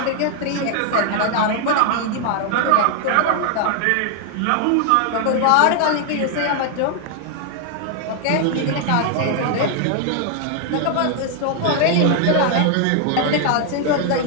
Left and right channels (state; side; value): different; both; correlation 0.00